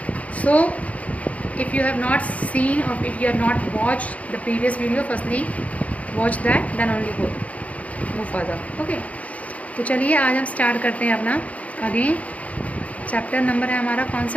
So if you have not seen or if you have not watched the previous video, firstly watch that, then only move further. Okay, तो चलिए आज हम start करते हैं अपना again chapter number है हमारा कौन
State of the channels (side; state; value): right; late; 0.068 ms